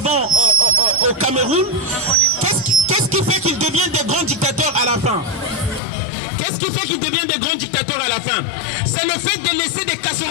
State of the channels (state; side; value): drops out; right; at 5.8 s